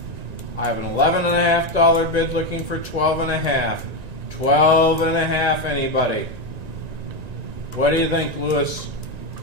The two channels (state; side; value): late; left; 1.9 ms